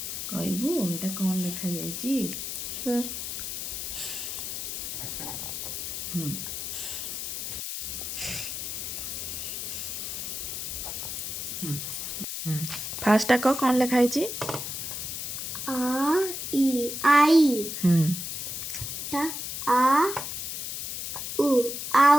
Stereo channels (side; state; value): left; noise; hiss, 5 dB below the sound